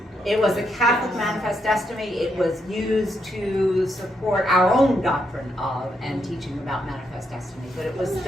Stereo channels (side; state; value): both; normal; correlation 0.79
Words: It was a Catholic Manifest Destiny. It was used to support our own doctrine of and teaching about Manifest Destiny, but it was